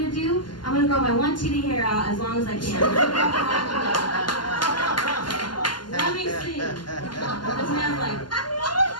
to do? I'm going to grow my one TD hair out as long as I can. Let me see. This man's like,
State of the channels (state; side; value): late; right; 0.71 ms